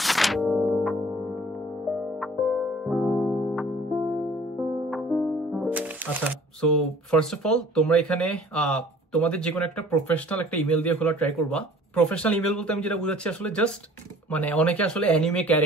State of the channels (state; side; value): normal; both; correlation 0.50